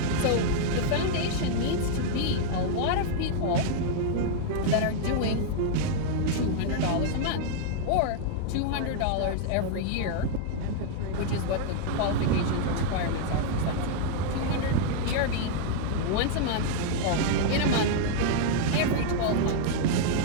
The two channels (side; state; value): both; different; correlation -0.01